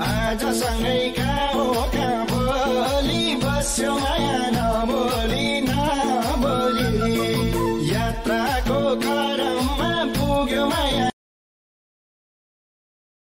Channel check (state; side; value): identical; both; correlation 1.00